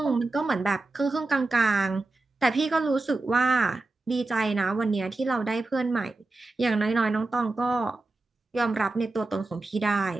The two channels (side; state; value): left; quieter; 3.3 dB